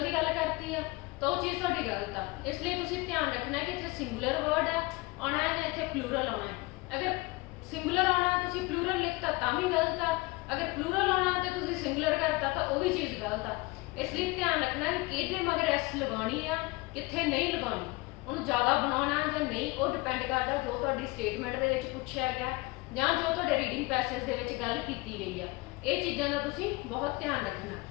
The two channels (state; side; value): quieter; right; 23.6 dB